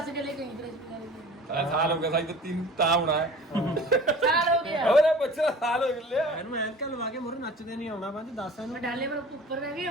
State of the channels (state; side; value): normal; both; correlation 0.43